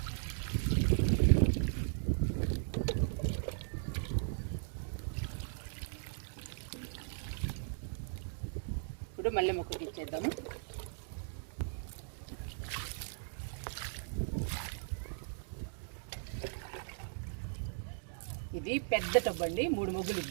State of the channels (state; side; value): silent; left; digital silence